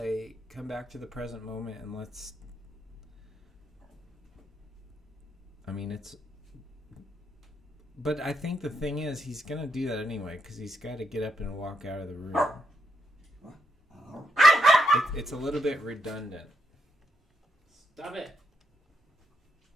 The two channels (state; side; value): normal; both; correlation 0.80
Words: come back to the present moment and let's. I mean, it's. But I think the thing is, he's gonna do that anyway because he's got to get up and walk out of the room. It's a little bit redundant. Stop it.